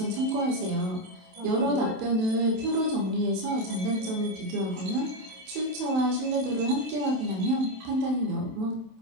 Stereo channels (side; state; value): left; late; 27 ms